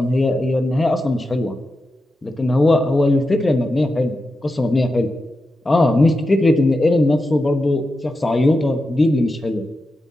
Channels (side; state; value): both; normal; correlation 0.90